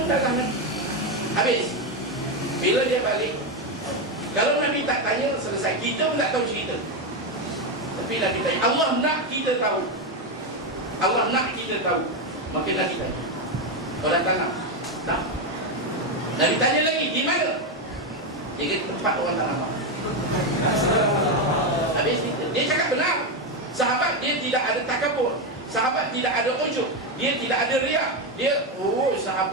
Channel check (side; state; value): both; normal; correlation 0.09